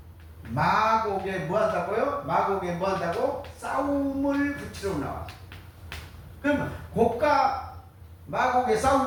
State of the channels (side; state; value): both; identical; correlation 1.00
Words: 마곡에 뭐한다고요? 마곡에 뭐한다고? 싸움을 붙이러 나왔어. 그러면 곡과 마곡의